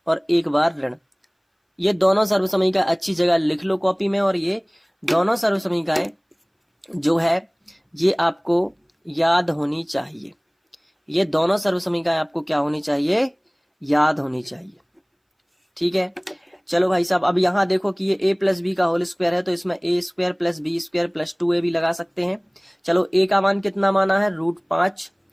और एक बार ऋण। ये दोनों सर्वसमीका अच्छी जगह लिख लो कॉपी में, और ये दोनों सर्वसमीकाएं जो है ये आपको याद होनी चाहिए। ये दोनों सर्वसमीकाएं आपको क्या होनी चाहिए? याद होनी चाहिए। ठीक है, चलो भाई साहब, अब यहां देखो कि ये a प्लस बी का होल स्क्वायर है, तो इसमें a square plus B square plus 2a भी लगा सकते हैं। चलो, a का मान कितना माना है? √5,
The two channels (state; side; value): identical; both; correlation 1.00